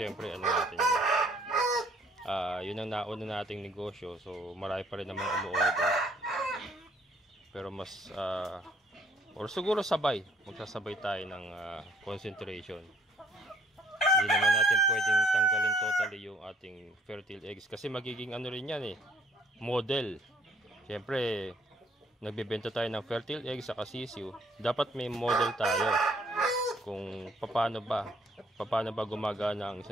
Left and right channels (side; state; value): both; normal; correlation 0.63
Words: ano natin yun ang nauna nating negosyo. So marami pa rin naman umu-order. Pero mas or siguro magsasabay tayo ng concentration. Hindi naman natin pwedeng tanggalin totally yung ating fertile eggs. Kasi magiging ano rin yan model. Syempre nagbebenta tayo ng fertile eggs sa sisiw, dapat may model tayo kung paano ba gumagana ang